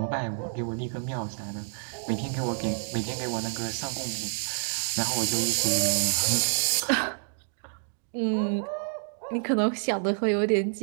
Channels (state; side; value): silent; left; digital silence